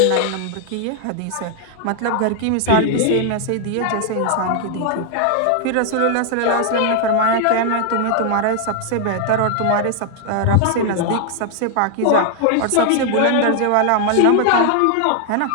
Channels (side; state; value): both; different; correlation 0.00